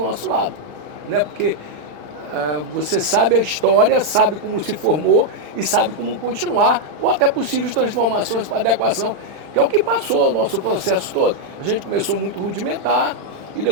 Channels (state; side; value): late; left; 36 ms